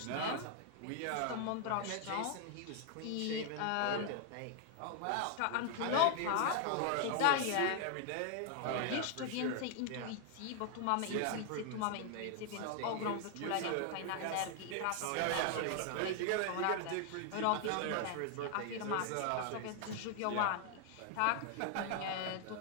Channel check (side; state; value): both; different; correlation 0.00